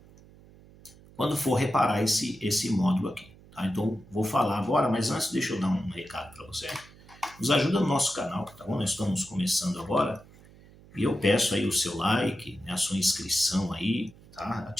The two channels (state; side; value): noise; right; hum, 23 dB below the sound